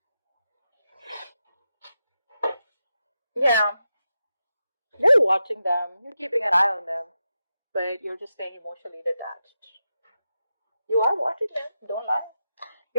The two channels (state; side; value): inverted; both; correlation -0.88